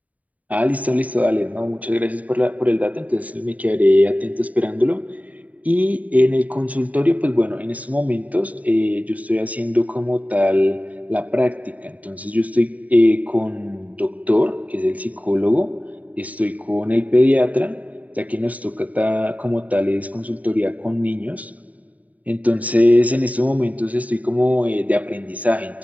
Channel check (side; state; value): left; late; 0.071 ms